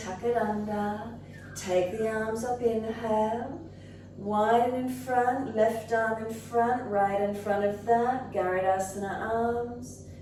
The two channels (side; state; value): both; identical; correlation 1.00